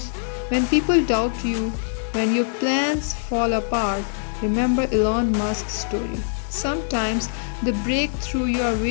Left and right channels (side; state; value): right; silent; digital silence